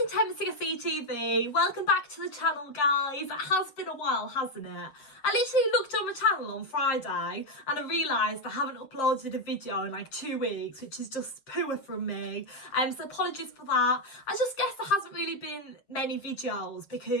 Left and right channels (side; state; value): right; late; 7.5 ms